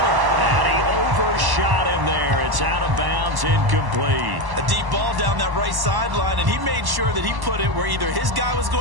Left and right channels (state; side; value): late; left; 1.1 ms